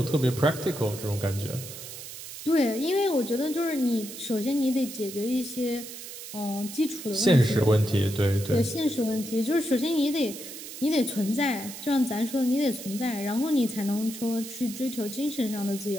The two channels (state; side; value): noise; right; hiss, 11 dB below the sound